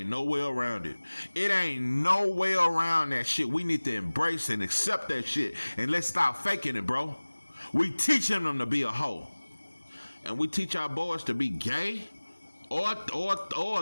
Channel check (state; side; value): inverted; both; correlation -1.00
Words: no way around it. It ain't no way around that shit. We need to embrace and accept that shit. And let's stop faking it, bro. We teaching them to be a hoe. And we teach our boys to be gay or